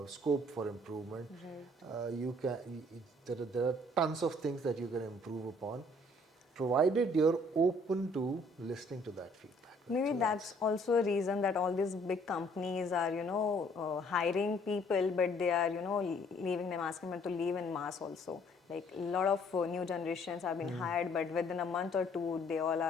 scope for improvement. There are tons of things that you can improve upon, provided you're open to listening to that feedback. Right? Maybe So that's also a reason that all these big companies are, hiring people, but they are, leaving them, asking them to leave in mass also. Like a lot of new generations have been hired, but within a month or two, they all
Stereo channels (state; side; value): normal; both; correlation 0.61